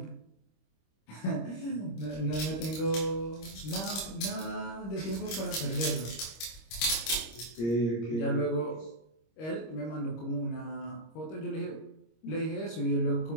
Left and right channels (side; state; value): right; late; 26 ms